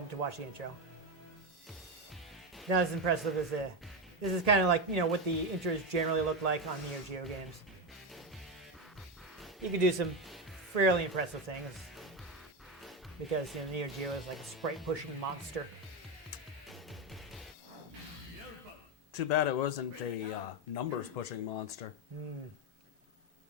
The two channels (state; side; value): normal; both; correlation 0.12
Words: to watch the intro. Not as impressive as this is kind of like, what the intros generally look like on Neo Geo games. You can do some fairly impressive things because Neo Geo is like a sprite pushing monster. Too bad it wasn't a numbers pushing monster.